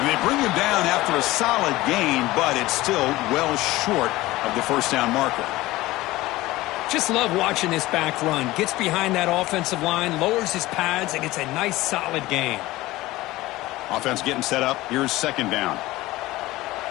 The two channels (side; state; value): right; quieter; 18.2 dB